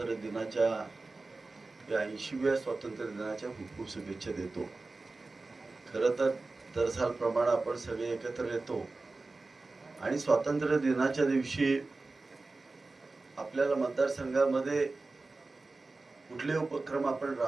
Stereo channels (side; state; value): left; quieter; 3.5 dB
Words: दिनाच्या या 80व्या स्वातंत्र्य दिनाच्या खूप खूप शुभेच्छा देतो. खरं तर दरसालप्रमाणे आपण सगळे एकत्र येतो आणि स्वातंत्र्य दिनाच्या दिवशी आपल्याला मतदारसंघामध्ये कुठले उपक्रम आपण